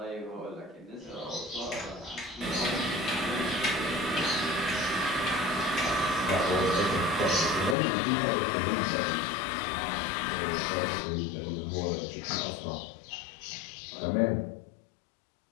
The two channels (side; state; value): right; drops out; at 7.8 s